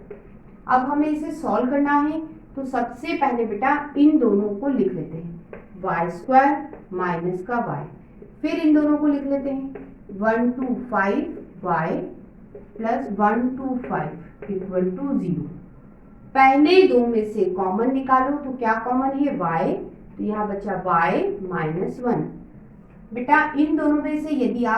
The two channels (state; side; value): identical; both; correlation 1.00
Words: अब हमें इसे सॉल्व करना है, तो सबसे पहले बेटा इन दोनों को लिख लेते हैं, y² माइनस का y, फिर इन दोनों को लिख लेते हैं 1 2 5 y प्लस 1 2 5 इक्वल टू 0। पहले दो में से कॉमन निकालो, तो क्या कॉमन है, y, तो यहाँ बचा y - 1। बेटा इन दोनों में से यदि